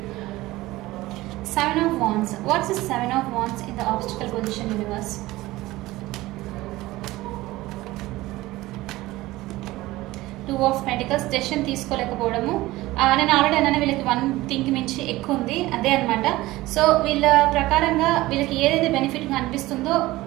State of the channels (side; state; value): left; quieter; 18.3 dB